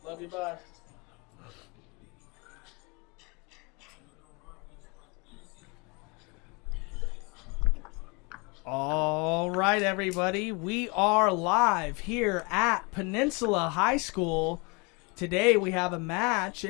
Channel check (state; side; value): quieter; right; 29.7 dB